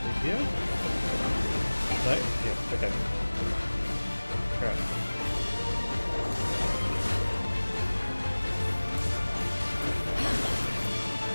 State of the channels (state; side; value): inverted; both; correlation -1.00